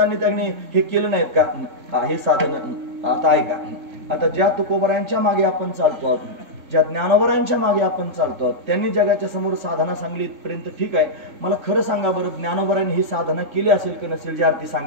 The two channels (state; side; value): late; left; 3.7 ms